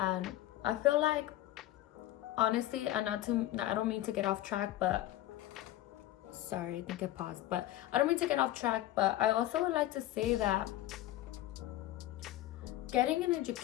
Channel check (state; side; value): quieter; right; 14.7 dB